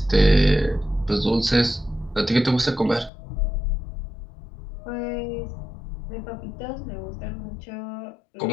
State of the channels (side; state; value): right; drops out; at 3.1 s